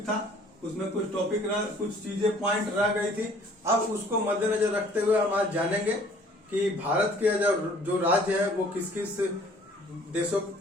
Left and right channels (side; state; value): both; normal; correlation 0.55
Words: था उसमें, कुछ चीजें पॉइंट रह गई थी। अब उसको मद्देनजर रखते हुए हम आज जानेंगे कि भारत के जो राज्य है वो किस किस